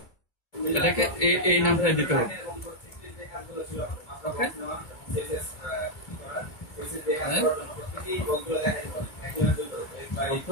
এটাকে এই নামটাই দিতে হবে, ওকে?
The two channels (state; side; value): late; right; 2.3 ms